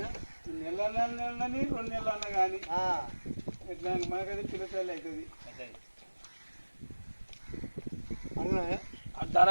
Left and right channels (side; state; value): both; inverted; correlation -1.00